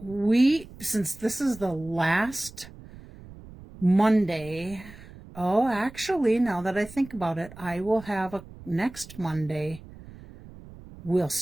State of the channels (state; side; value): noise; right; rumble, 18 dB below the sound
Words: since this is the last Monday, actually, now that I think about it, I will have next Monday, we'll